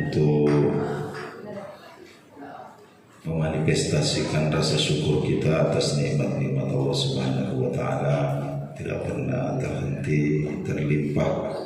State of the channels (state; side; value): identical; both; correlation 1.00